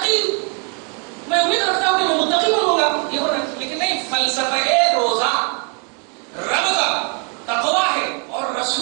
میں امید رکھتا ہوں کہ میں متقی بنوں گا. یہ ہونا، لیکن نہیں، فلسفہ روزہ رب کا تقویٰ ہے اور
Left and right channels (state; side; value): quieter; left; 36.4 dB